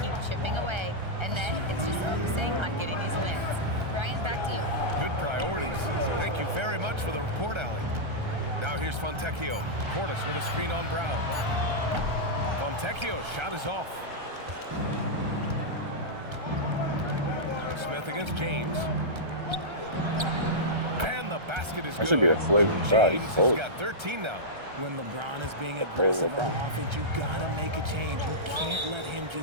keep chipping away. And then it's just focusing on getting these wins. Ryan, back to you. Good priorities. Thank you very much for the report, Allie. Now here's Fontecchio. Portis with a screen on Brown. Fontecchio's shot is off. Smith against James. And the basket is good. That should be a flagrant shot. James has got 13 now. When LeBron is being aggressive on offense, you gotta make a change. You can't let him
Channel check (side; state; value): left; late; 1.3 ms